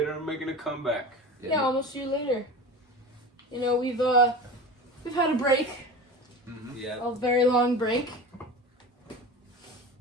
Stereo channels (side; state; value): both; normal; correlation 0.32